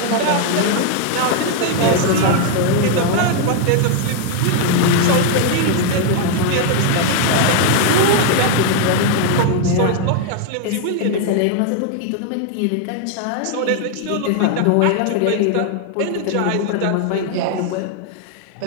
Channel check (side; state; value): both; different; correlation 0.00